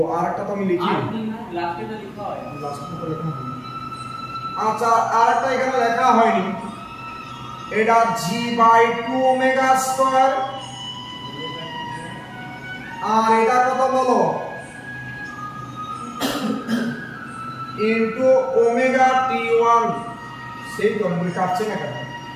আরেকটা তো আমি লিখি, লাস্টেটা লেখা হয়, লাস্টেটা লেখা হয়নি। আচ্ছা আরেকটা এখানে লেখা হয়নি, এটা G/2 ওমেগা স্কয়ার, আর এটা কত বলো? Into omega T1। সেই তো আমি কাটছে না কেন?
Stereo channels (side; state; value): both; identical; correlation 1.00